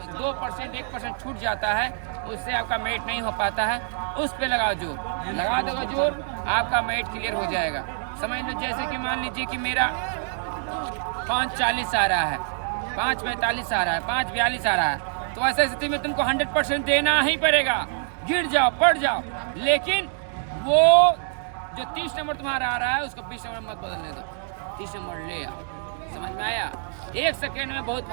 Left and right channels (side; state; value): left; silent; digital silence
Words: 2% 1% छूट जाता है उससे आपका मेट नहीं हो पाता है, उस पे लगाओ जोर, लगा दोगे जोर आपका मेट क्लियर हो जाएगा। समझ लो जैसे कि मान लीजिए कि मेरा 5:40 आ रहा है, 5:45 आ रहा है, 5:42 आ रहा है, तो ऐसी स्थिति में तुमको 100% देना ही पड़ेगा, गिर जाओ पड़ जाओ। लेकिन वो जो 30 नंबर तुम्हारा आ रहा है उसको 20 नंबर मत बदलने दो, 30 नंबर ले आओ। समझ में आया? 1 सेकेंड में बहुत